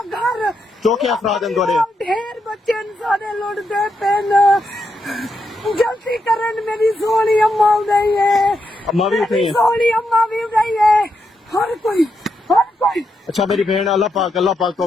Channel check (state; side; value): normal; both; correlation 0.83